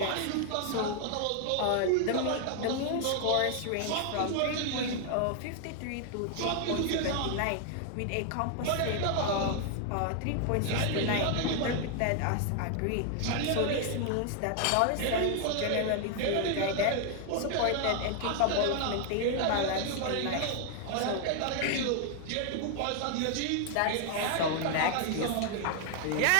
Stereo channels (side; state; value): both; different; correlation 0.00